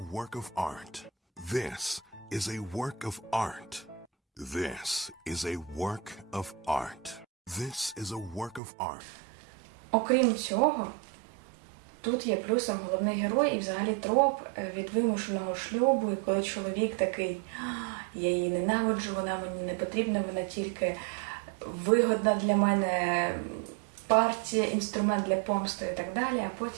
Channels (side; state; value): left; drops out; at 8.6 s